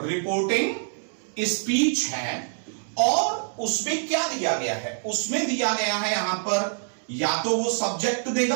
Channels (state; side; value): silent; left; digital silence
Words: स्पीच है, और उसमें क्या दिया गया है, उसमें दिया गया है यहां पर या तो वो सब्जेक्ट